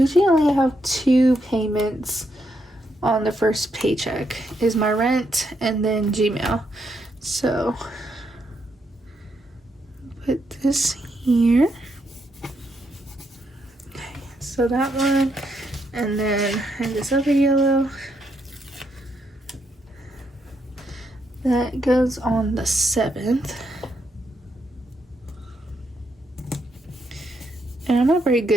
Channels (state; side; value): normal; both; correlation 0.79